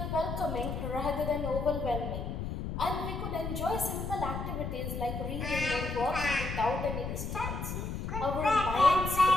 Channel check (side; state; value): left; noise; rumble, 4 dB below the sound